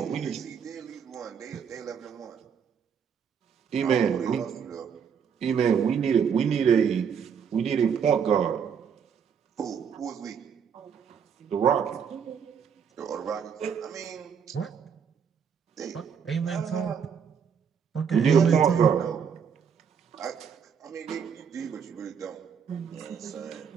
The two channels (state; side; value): quieter; left; 7.1 dB